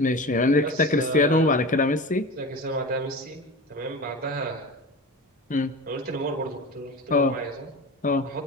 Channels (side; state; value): both; normal; correlation 0.31